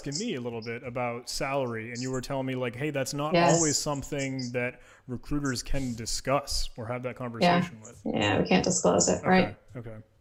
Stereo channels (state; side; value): identical; both; correlation 1.00